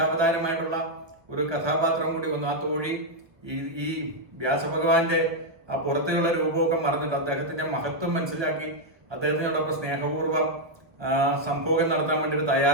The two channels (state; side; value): late; left; 1.1 ms